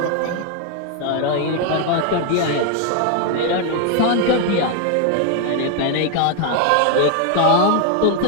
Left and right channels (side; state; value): both; different; correlation 0.00